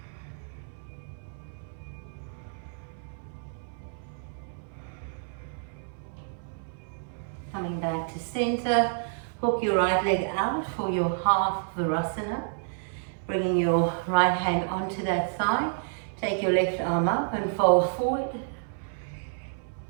Coming back to center, hook your right leg out for your half Virasana. Bringing your right hand onto that thigh. Take your left arm up and fold forward.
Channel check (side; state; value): left; silent; 58 dB below the other